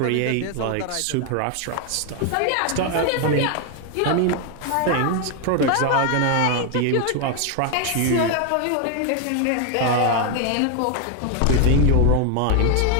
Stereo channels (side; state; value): both; different; correlation 0.01